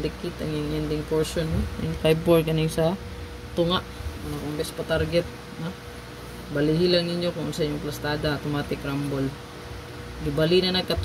ang yung ending portion. No? 954 kanay sa tunga. Ano kung best pa target. No? Balihi lang ninyo kung sa inyong plastada, automatic rumble. Gibali na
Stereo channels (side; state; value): both; identical; correlation 1.00